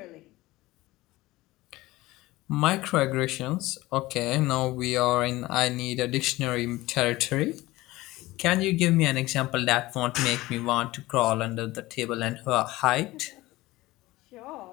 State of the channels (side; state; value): right; quieter; 18.8 dB